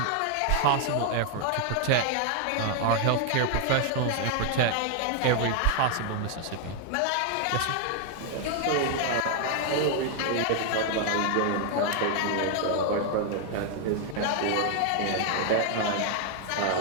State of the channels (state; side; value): different; both; correlation 0.00